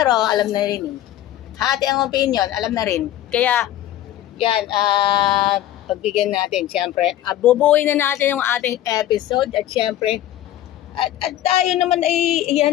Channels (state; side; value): quieter; right; 12.9 dB